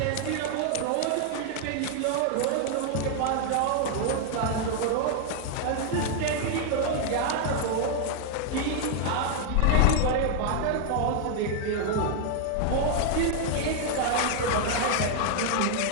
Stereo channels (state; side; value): different; both; correlation 0.00